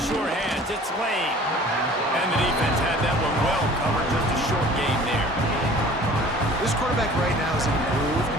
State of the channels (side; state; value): both; normal; correlation 0.48